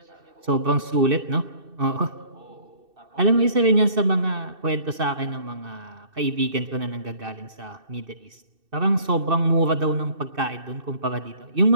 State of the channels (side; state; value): left; late; 2.6 ms